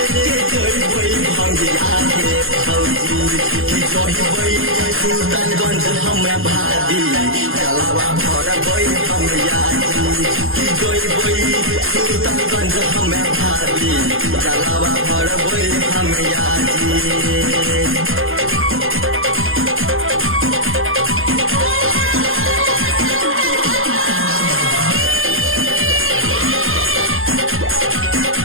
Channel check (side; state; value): left; late; 0.60 ms